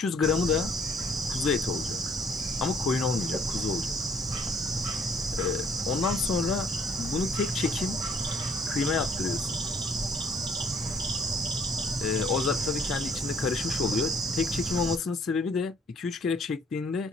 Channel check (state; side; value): normal; both; correlation 0.62